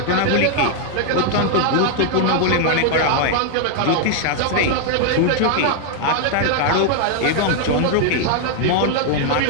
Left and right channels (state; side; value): different; both; correlation 0.00